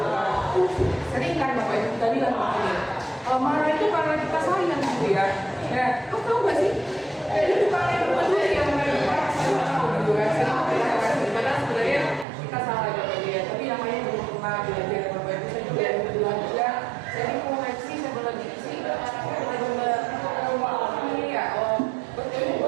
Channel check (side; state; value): left; drops out; at 12.2 s